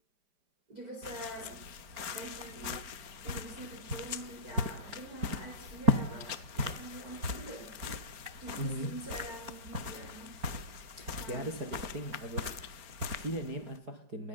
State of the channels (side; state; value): left; late; 5.0 ms